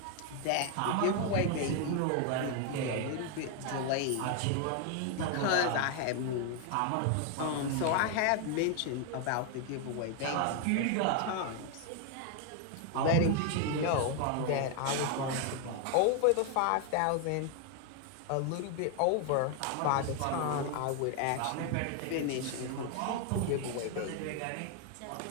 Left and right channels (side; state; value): both; different; correlation 0.01